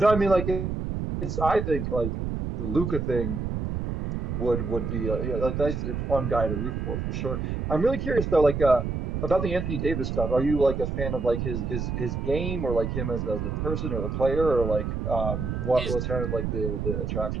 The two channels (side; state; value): right; noise; rumble, 2 dB below the sound